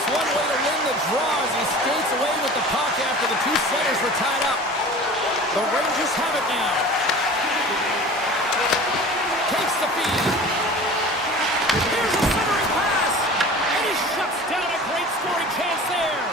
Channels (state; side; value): normal; both; correlation 0.40